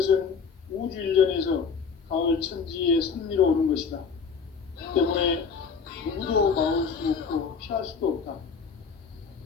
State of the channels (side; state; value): right; quieter; 5.8 dB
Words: 우주 일전에서 가을 천지에 선미로 오는 것이다. 때문에 누구도 막을 수 없고 피할 수도 없다.